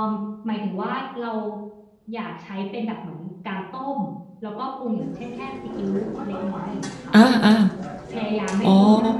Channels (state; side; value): identical; both; correlation 1.00